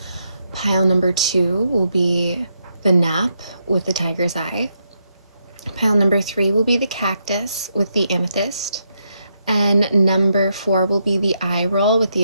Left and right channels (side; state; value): both; inverted; correlation -0.80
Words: Pile number 2 will be the nap with the tiger's eye. Pile number 3 will be the cactus with the amethyst. And number 4 will be the eye roll with the